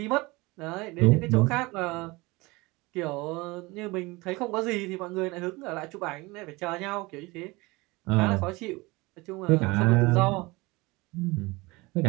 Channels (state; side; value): quieter; left; 23.4 dB